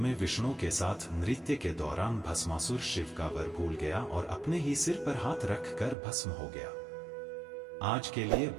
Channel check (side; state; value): left; drops out; at 6.0 s